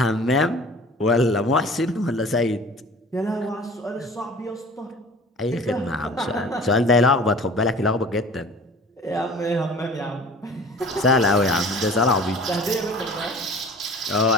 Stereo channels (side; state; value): both; normal; correlation 0.44